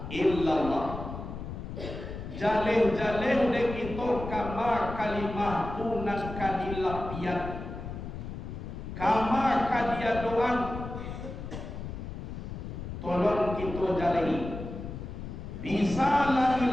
illallah. Jaleh-jaleh de kita kama kalimah tunan kadilapian, kama kadia doang. Tolong kita jalehi. Bisa la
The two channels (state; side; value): noise; left; rumble, 8 dB below the sound